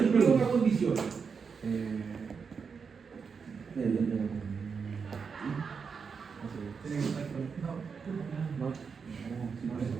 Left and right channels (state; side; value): quieter; left; 5.7 dB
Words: pero no una condición.